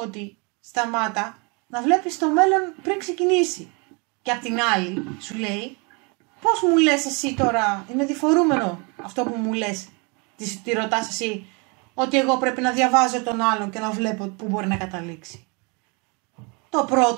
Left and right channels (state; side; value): quieter; left; 31.7 dB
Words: σταμάτα να βλέπεις το μέλλον πριν ξεκινήσει. Και απ' την άλλη, σου λέει, πώς μου λες εσύ τώρα, είναι διφορούμενο αυτό που μου λες, τη ρωτάς εσύ, ότι εγώ πρέπει να διαβάζω τον άλλον και να βλέπω πού μπορεί να καταλήξει. Το